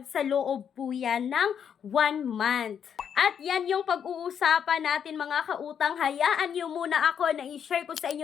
sa loob po yan ng 1 month. At yan yung pag-uusapan natin mga kautang. Hayaan nyo muna ako na i-share ko sa inyo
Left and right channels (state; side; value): quieter; right; 8.0 dB